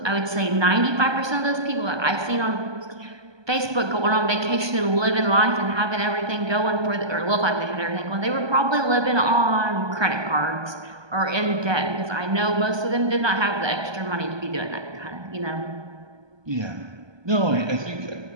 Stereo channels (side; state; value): left; late; 1.2 ms